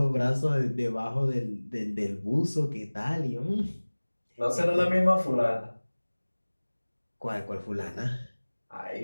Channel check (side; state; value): both; inverted; correlation -1.00